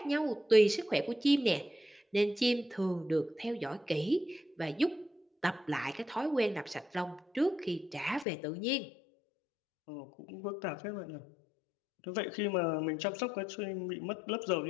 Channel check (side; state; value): right; drops out; at 8.2 s